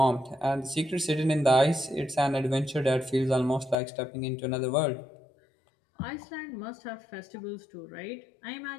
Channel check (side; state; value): right; drops out; at 3.8 s